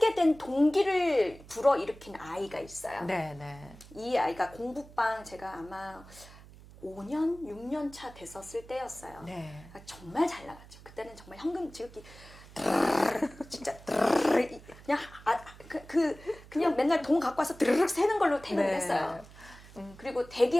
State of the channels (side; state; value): right; noise; hum, 20 dB below the sound